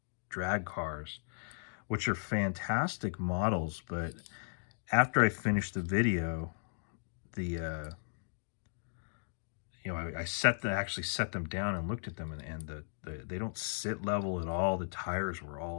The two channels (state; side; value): silent; right; digital silence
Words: drag cars, which are fantastic models. But after I finished the video, I actually set them down and looked at them, and they don't sit level at all. The tires were